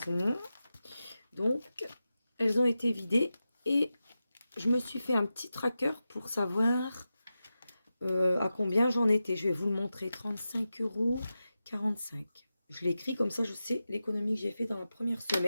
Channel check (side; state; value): both; inverted; correlation -0.92